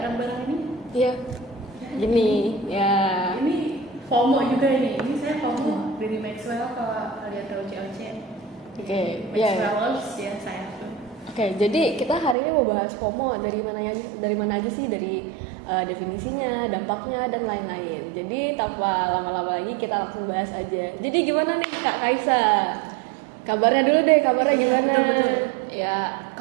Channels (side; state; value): left; drops out; at 12.4 s